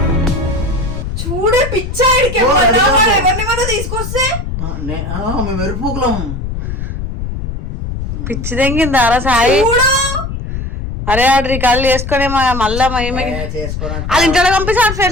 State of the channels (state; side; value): noise; left; rumble, 5 dB below the sound